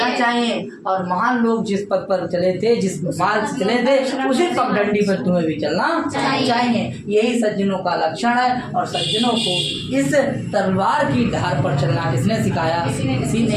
चाहिए और महान लोग जिस पद पर चले थे, जिस मार्ग से चले थे, उसी पगडंडी पर तुम्हें भी चलना चाहिए। यही सज्जनों का लक्षण है और सज्जनों को इस तलवार की धार पर चलना किसने सिखाया? किसी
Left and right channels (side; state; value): both; identical; correlation 1.00